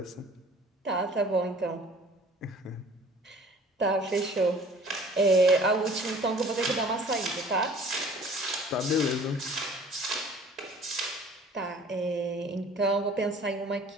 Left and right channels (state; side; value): normal; both; correlation 0.50